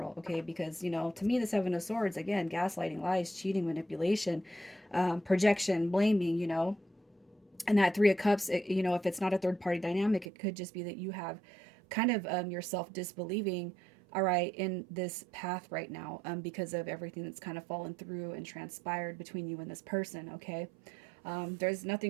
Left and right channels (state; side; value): drops out; left; at 10.2 s